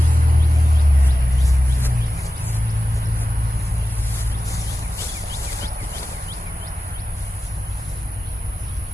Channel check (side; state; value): both; normal; correlation 0.93